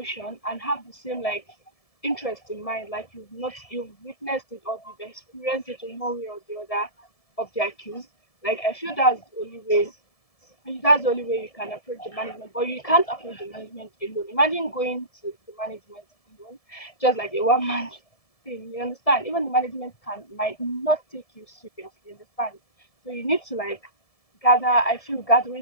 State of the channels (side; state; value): right; late; 1.7 ms